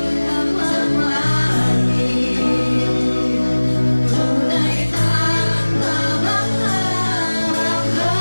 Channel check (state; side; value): inverted; both; correlation -1.00